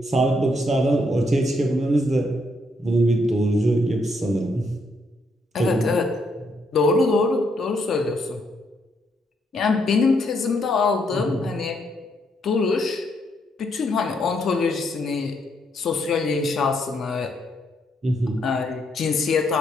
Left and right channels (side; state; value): both; normal; correlation 0.75